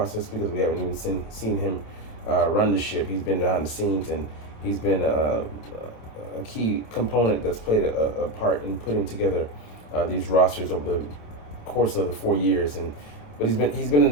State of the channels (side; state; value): right; late; 27 ms